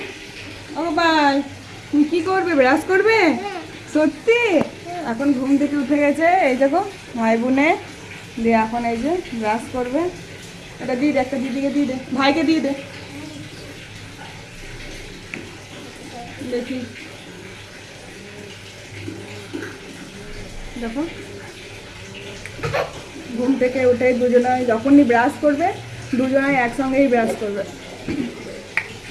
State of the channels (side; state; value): both; identical; correlation 1.00